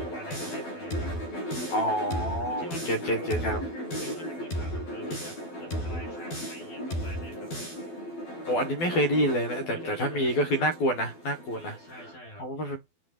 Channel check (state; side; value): late; right; 12 ms